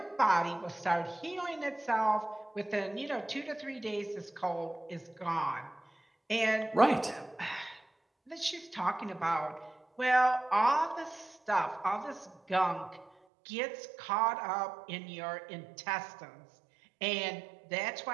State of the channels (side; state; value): left; drops out; at 13.1 s